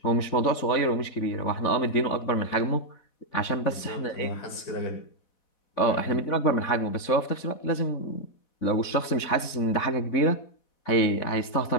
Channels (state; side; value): late; right; 4.1 ms